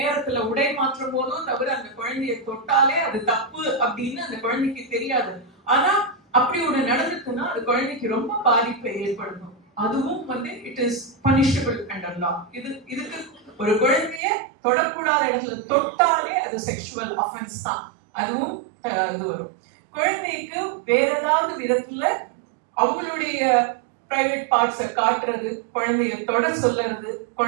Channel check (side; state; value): left; drops out; at 14.2 s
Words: உடை மாற்றும் போதோ தவிர அந்த குழந்தைய தொட்டாலே அது தப்பு அப்படின்னு அந்த குழந்தைக்கு தெரியாது. ஆனா அப்படி ஒண்ணு நடந்துச்சுன்னா அது குழந்தைக்கு ரொம்ப பாதிப்பை ஏற்படுத்தும். அதுவும் வந்து இட் இஸ் பனிஷபிள் அண்டர் லா. இதுக்கு ஒரு குழந்தைய தொடக்கூடாத இடத்துல தொட்டாலே அது செக்ஷுவல் அஃபென்ஸ் தான். அதுவும் இது வரும். குழந்தைக்கு வேற ஏதாவது விதத்துல அவங்களுடைய பிரைவேட் பார்ட்ஸை காட்டுறது, குழந்தைய தொட சொல்லுறது,